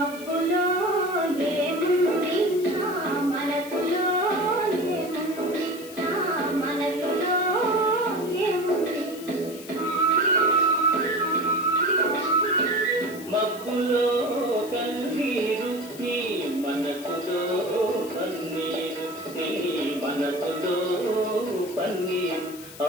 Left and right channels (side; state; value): left; noise; hiss, 16 dB below the sound